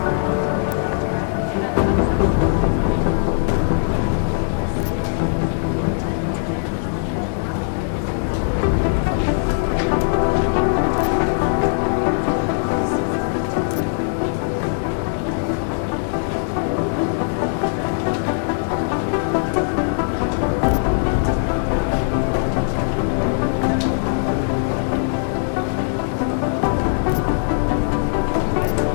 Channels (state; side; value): silent; right; digital silence